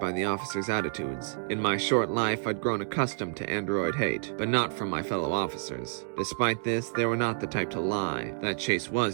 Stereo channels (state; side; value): silent; left; digital silence